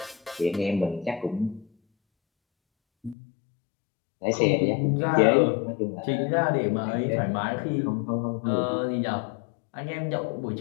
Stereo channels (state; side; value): drops out; right; at 3.2 s